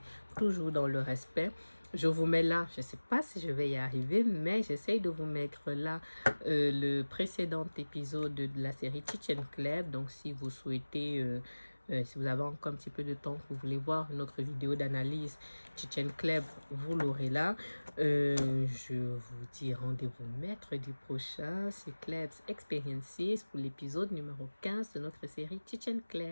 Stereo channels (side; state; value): both; inverted; correlation -1.00